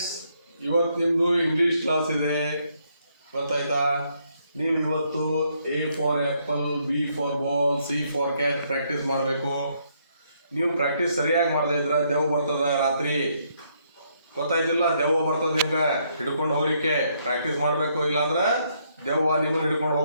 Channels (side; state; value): both; inverted; correlation -0.73